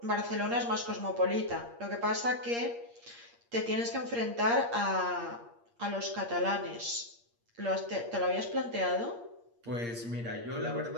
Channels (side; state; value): left; late; 8.6 ms